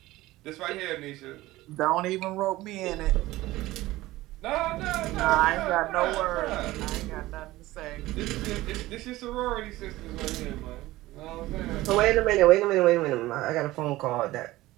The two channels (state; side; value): quieter; left; 17.6 dB